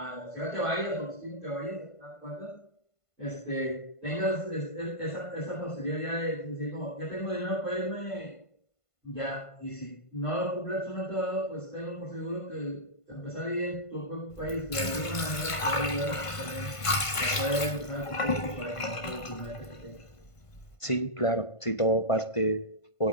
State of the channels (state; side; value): late; right; 1.5 ms